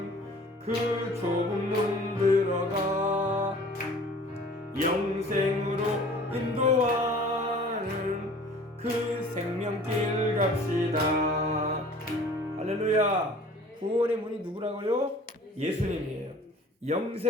그 좁은 문 들어가 영생으로 인도하는 그 생명길 갑시다. 할렐루야. 구원의 문이 누구라고요? 예수님이에요.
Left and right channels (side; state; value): both; normal; correlation 0.48